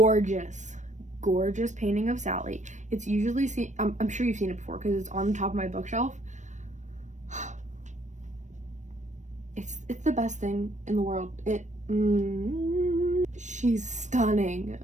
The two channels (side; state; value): left; late; 0.35 ms